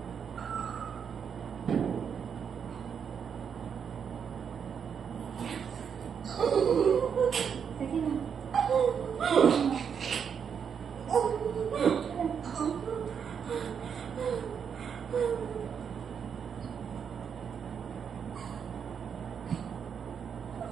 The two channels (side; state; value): left; quieter; 7.2 dB